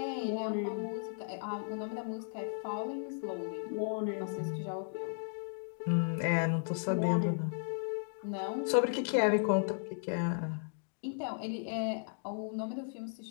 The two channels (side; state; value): right; silent; digital silence